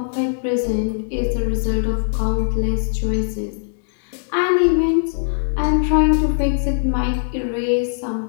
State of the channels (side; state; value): right; silent; digital silence